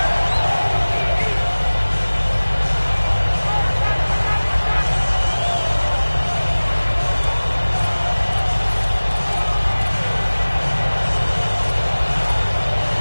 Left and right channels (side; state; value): both; inverted; correlation -1.00